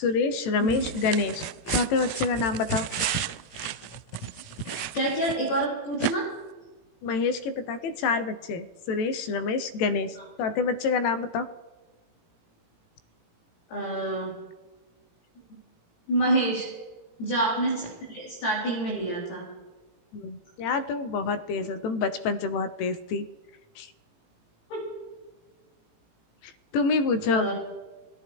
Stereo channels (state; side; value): late; right; 18 ms